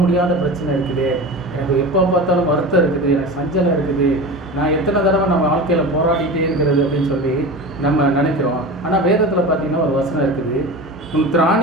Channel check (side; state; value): both; normal; correlation 0.30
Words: முடியாத பிரச்சனை இருக்குது, எனக்கு எப்போ பார்த்தாலும் வருத்தம் இருக்குது, எனக்கு சஞ்சலம் இருக்குது, நான் எத்தனை தடவை நம்ம வாழ்க்கையில் போராடிட்டே இருக்கிறது அப்படின்னு சொல்லி நம்ம நினைக்கிறோம். ஆனால் வேதத்தில் பார்த்தீங்கன்னா ஒரு வசனம் இருக்குது, உன்